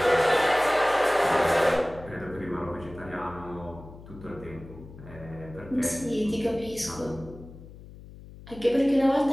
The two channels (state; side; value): noise; left; hum, 17 dB below the sound